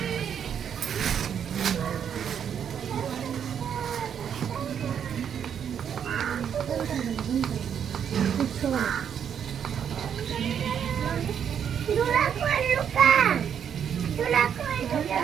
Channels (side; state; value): left; quieter; 8.3 dB